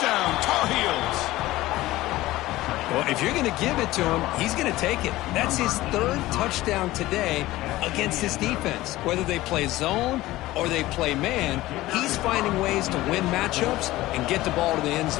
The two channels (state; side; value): quieter; right; 17.3 dB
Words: Tar Heels! Well, if you're going to give it to him, he's going to take it. That's his third touchdown today against this defense. Whether they play zone or they play man, he's finding ways to win matchups and get the ball to the end